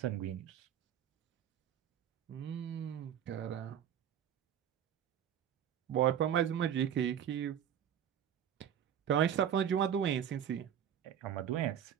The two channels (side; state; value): left; quieter; 9.4 dB